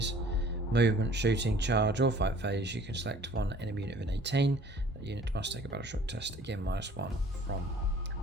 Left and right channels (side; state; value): both; normal; correlation 0.51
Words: movement, shooting, charge, or fight phase, you can select one enemy unit within 18. That unit must take a battle shock test, again -1 from